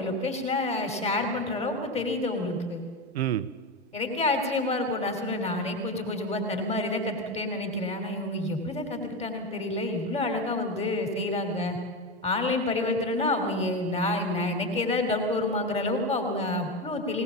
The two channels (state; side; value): normal; both; correlation 0.18